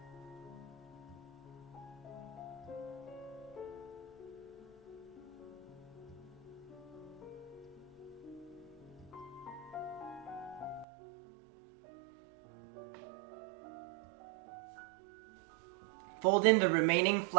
Fold in the remaining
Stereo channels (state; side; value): drops out; left; at 10.9 s